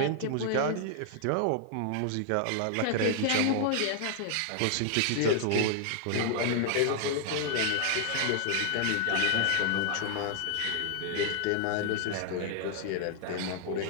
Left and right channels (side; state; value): both; different; correlation 0.00